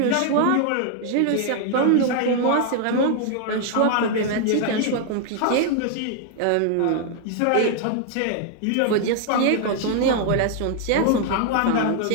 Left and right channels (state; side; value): different; both; correlation 0.00